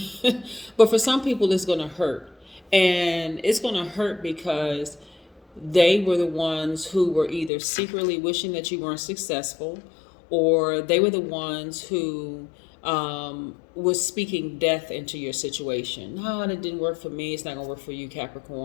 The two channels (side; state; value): right; drops out; at 7.5 s